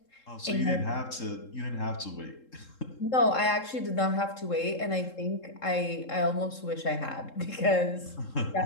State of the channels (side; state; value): right; late; 3.7 ms